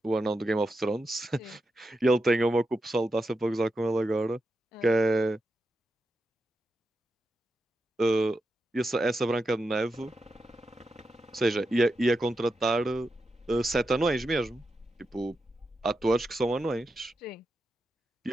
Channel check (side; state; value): both; normal; correlation 0.88